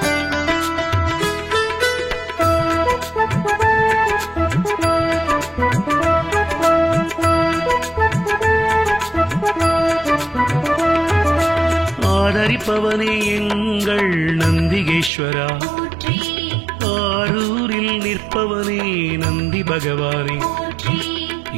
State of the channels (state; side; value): drops out; left; at 15.1 s